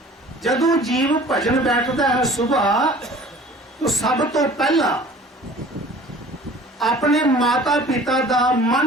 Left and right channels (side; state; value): both; normal; correlation 0.47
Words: ਜਦੋਂ ਜੀਵ ਭਜਨ ਬੈਠਦਾ ਹੈ ਸੁਬਾਹ, तो सब तो पहला अपने माता पिता का